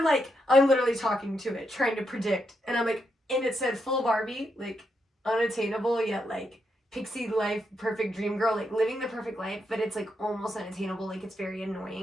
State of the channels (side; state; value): both; normal; correlation 0.82